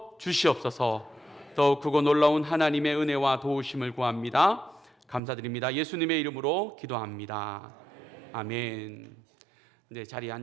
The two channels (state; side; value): drops out; left; at 5.2 s